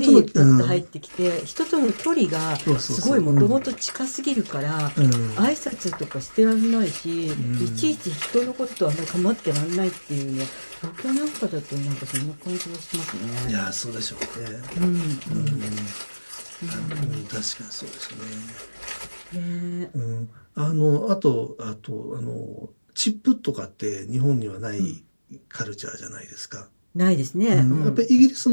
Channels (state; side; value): inverted; both; correlation -1.00